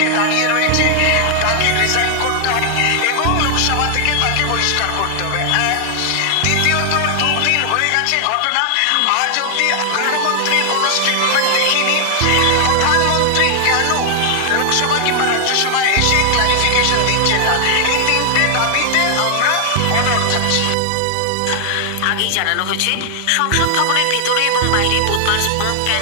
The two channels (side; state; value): both; different; correlation 0.00